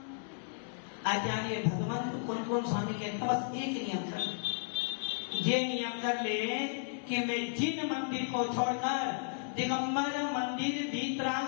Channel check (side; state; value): right; silent; digital silence